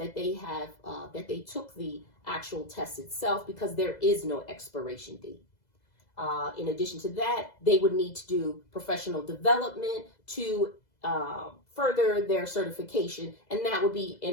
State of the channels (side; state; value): right; late; 2.0 ms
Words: they have, that they took the actual test itself, because there is no expiration date. In addition to that, they would need to do professional development to further their certification, and that would be